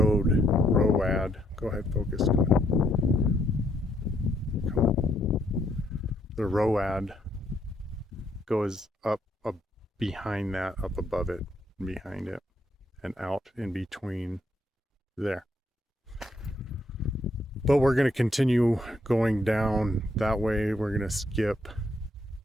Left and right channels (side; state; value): both; normal; correlation 0.73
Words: Go ahead, focus. Come on. The ROAD goes up behind that, up above it, and behind it, and out in between there. But we're going to continue going down that way. We're going to skip